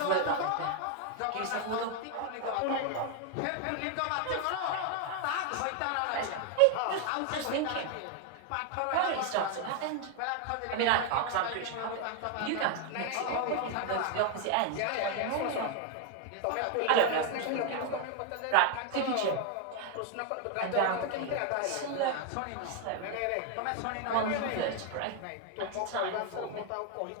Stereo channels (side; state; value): both; different; correlation 0.01